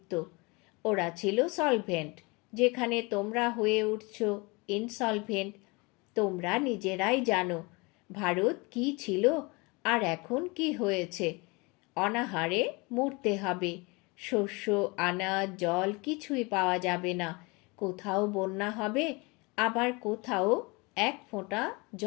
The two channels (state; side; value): quieter; right; 27.0 dB